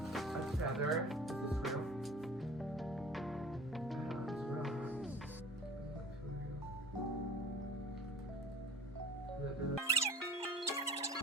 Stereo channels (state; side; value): normal; both; correlation 0.44